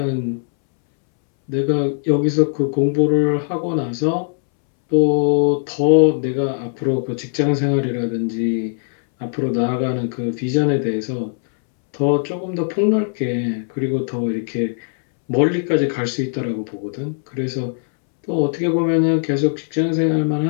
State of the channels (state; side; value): silent; right; 66 dB below the other